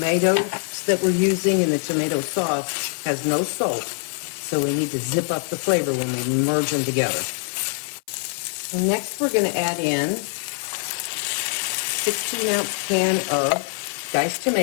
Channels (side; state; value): right; silent; 60 dB below the other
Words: that we're using in the tomato sauce has no salt. So we need to zip up the flavor when we merge them together. And next we're going to add in 16-ounce can of diced